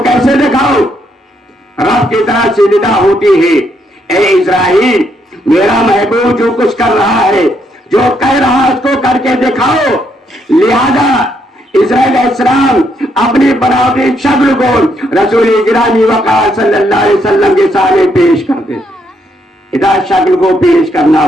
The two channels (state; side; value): normal; both; correlation 0.75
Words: कैसे दिखाऊं। रब की तरह से निदा होती है, ए इज़राइल, मेरा महबूब जो कुछ कर रहा है, जो कह रहा है, उसको करके दिखाओ। लिहाजा इज़राइल इस्लाम अपनी बनावटी शक्ल को रसूल गिरामी वक़ार सल्लल्लाहु अलैहि वसल्लम के सामने पेश करते। इधर शक्ल को पेश करना